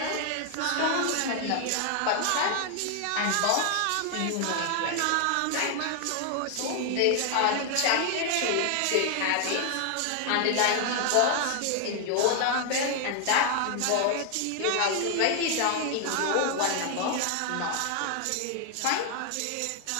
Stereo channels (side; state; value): both; different; correlation 0.00